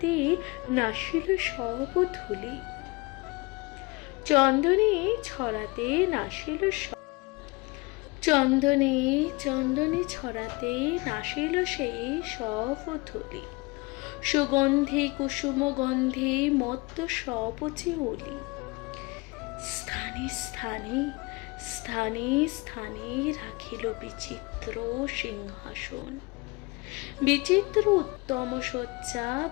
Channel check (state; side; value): quieter; right; 25.8 dB